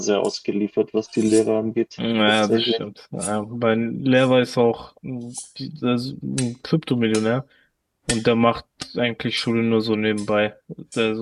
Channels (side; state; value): both; identical; correlation 1.00